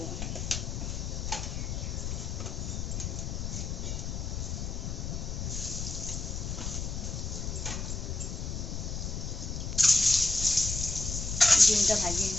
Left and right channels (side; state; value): left; noise; rumble, 3 dB below the sound